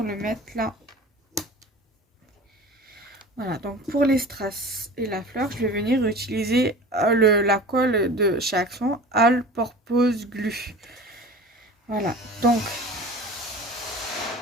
le mettre là. Voilà, donc pour les strass et la fleur, je vais venir utiliser la colle de chez Action, All Purpose Glue. Voilà, donc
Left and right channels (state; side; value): normal; both; correlation 0.37